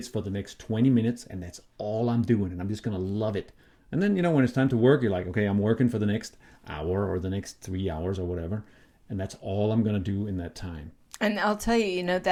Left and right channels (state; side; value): identical; both; correlation 1.00